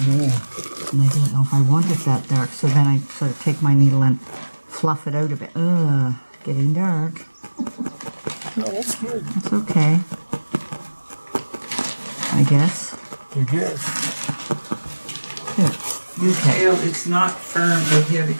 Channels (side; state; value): both; inverted; correlation -1.00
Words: And I don't know if I want it that dark, so then I sort of take my needle and fluff it out a bit. Ugh, getting dark. Oh, that's good. That's okay. I guess. You can. Here. Okay. Tail, it's not firm right here